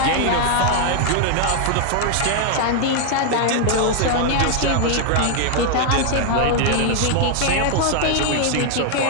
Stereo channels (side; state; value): both; different; correlation 0.00